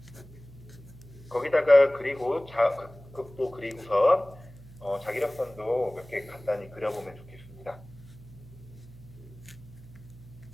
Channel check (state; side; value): noise; right; hum, 19 dB below the sound